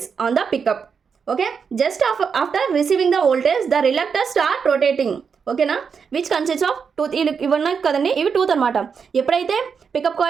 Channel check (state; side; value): quieter; left; 6.2 dB